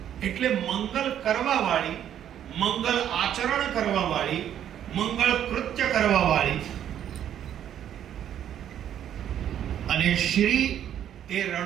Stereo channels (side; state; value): left; quieter; 10.2 dB